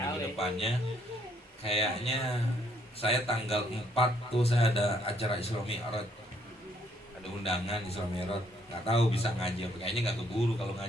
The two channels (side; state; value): both; normal; correlation 0.68